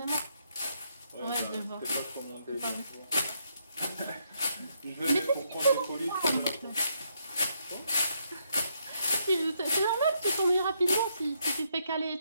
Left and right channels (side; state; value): both; inverted; correlation -0.76